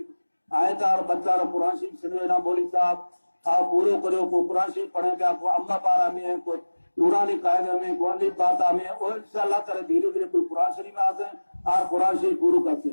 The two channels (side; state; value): both; inverted; correlation -1.00